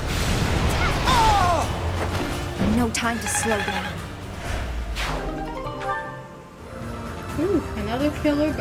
No time to slow down. Ooh, another killer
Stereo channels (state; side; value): identical; both; correlation 1.00